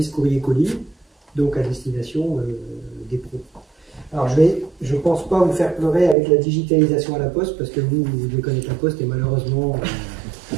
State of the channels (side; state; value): left; drops out; at 6.2 s